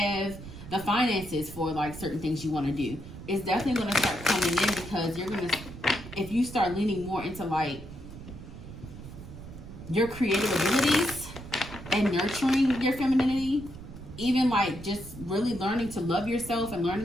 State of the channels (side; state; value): right; noise; rumble, 13 dB below the sound